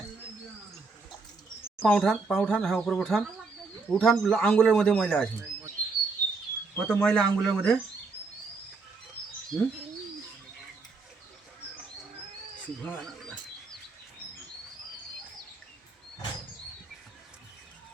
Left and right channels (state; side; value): quieter; left; 4.2 dB